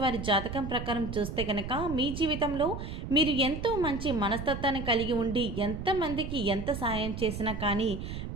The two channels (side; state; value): right; noise; rumble, 7 dB below the sound